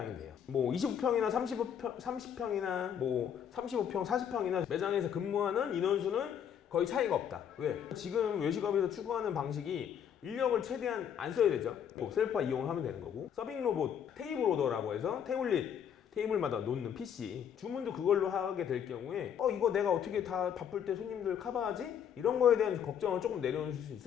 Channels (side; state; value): right; quieter; 8.6 dB